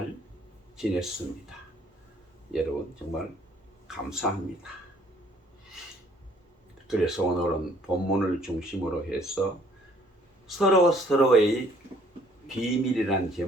지냈습니다. 여러분 정말 감사합니다. 그래서 오늘은 본문을 중심으로 해서 서로의 비밀이란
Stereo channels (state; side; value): normal; both; correlation 0.61